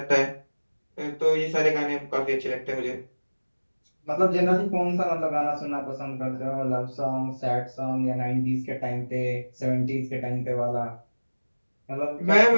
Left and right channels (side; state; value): both; inverted; correlation -1.00